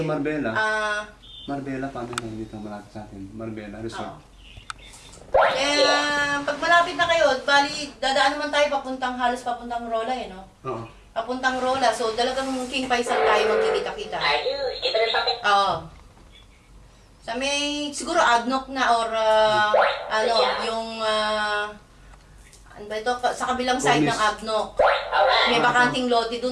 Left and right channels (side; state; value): both; identical; correlation 1.00